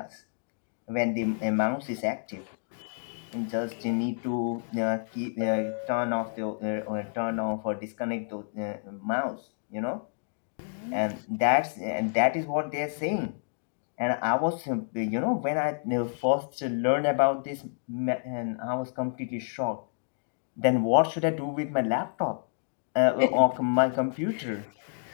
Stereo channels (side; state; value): right; silent; digital silence